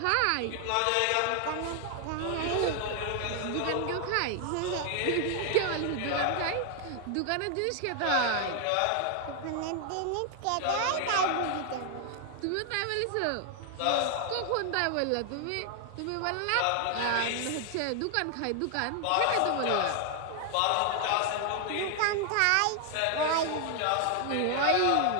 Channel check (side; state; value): both; different; correlation 0.00